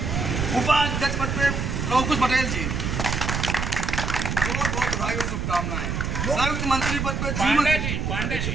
उपाध्यक्ष पद पे लवकुश पटेल जी, बहुत बहुत बधाई और शुभकामनाएं। संयुक्त मंत्री पद पे जीवन सिंह। पांडे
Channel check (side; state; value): right; noise; rumble, 1 dB below the sound